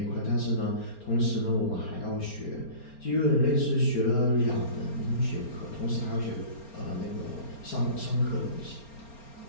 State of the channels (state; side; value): late; right; 4.3 ms